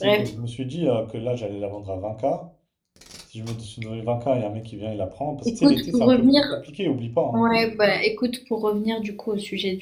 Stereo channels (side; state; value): both; identical; correlation 1.00